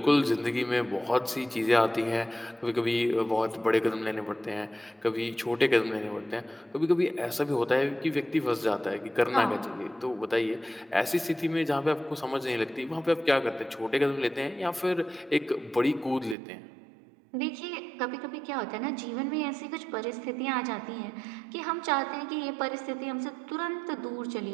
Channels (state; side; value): drops out; left; at 16.4 s